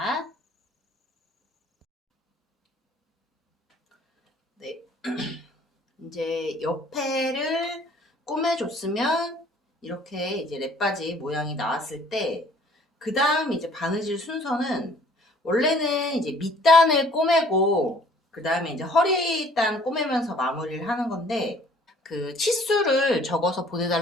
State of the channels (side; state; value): both; normal; correlation 0.56